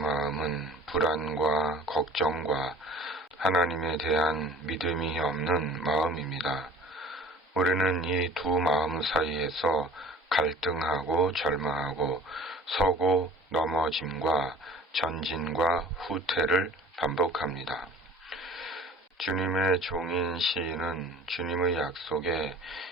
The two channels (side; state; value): both; normal; correlation 0.46